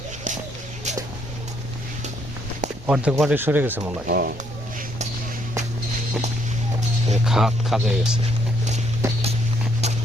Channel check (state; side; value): normal; both; correlation 0.70